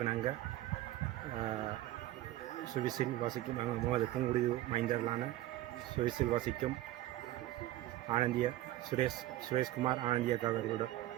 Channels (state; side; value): quieter; left; 15.4 dB